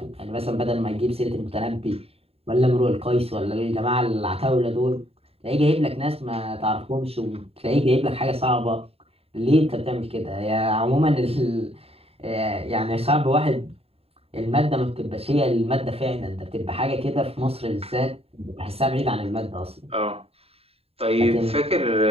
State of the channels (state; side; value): late; left; 0.29 ms